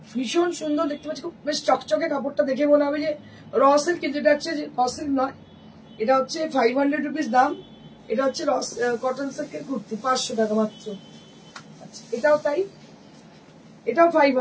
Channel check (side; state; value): both; identical; correlation 1.00